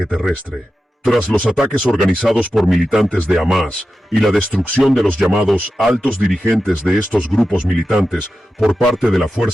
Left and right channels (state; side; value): normal; both; correlation 0.92